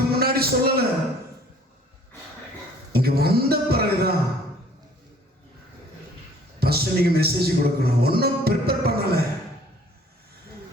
முன்னாடி சொல்லல. இங்க வந்த பிறகுதான் ஃபர்ஸ்ட் நீங்க மெசேஜ் கொடுக்கணும். ஒன்றும் ப்ரிப்பேர் பண்ணல.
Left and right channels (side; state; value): both; normal; correlation 0.55